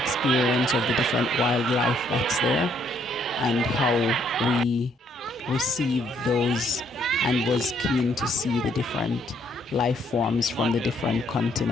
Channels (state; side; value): normal; both; correlation 0.69